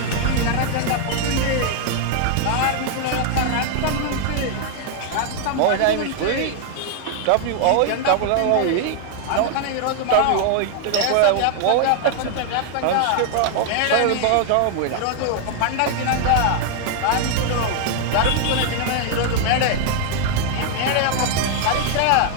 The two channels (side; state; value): both; different; correlation 0.00